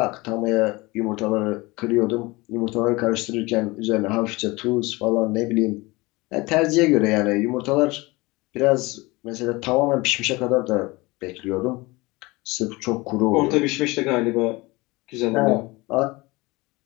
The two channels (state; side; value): quieter; right; 23.0 dB